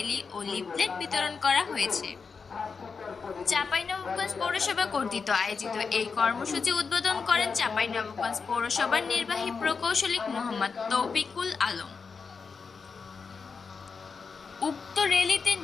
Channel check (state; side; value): quieter; right; 5.2 dB